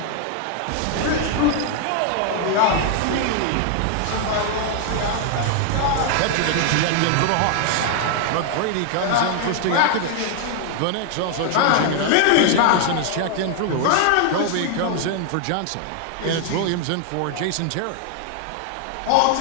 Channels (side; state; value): both; different; correlation 0.00